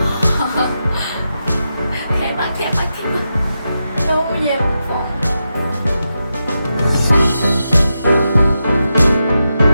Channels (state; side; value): inverted; both; correlation -0.88